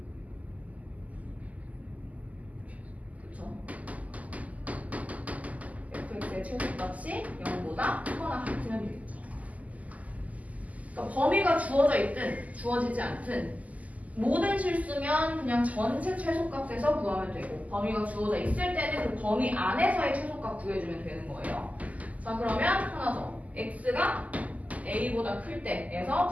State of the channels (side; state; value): left; late; 0.074 ms